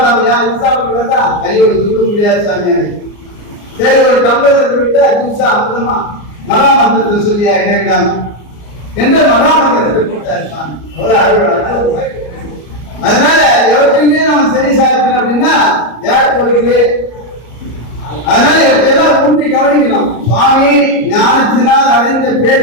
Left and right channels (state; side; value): late; right; 34 ms